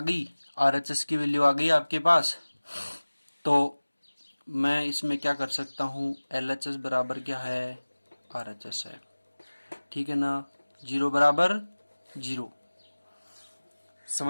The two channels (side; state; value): both; inverted; correlation -1.00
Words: गई, RHS की वैल्यू आ गई आपके पास, तो मैं इसमें क्या कर सकता हूँ, LHS बराबर क्या है RHS है, ठीक है ना, 0 बराबर 0।